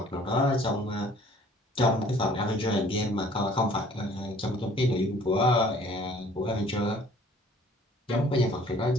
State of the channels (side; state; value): both; normal; correlation 0.55